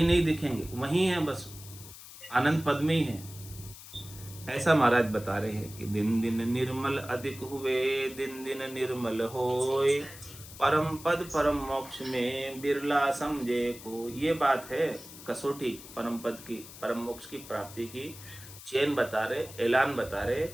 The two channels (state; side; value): noise; left; hiss, 16 dB below the sound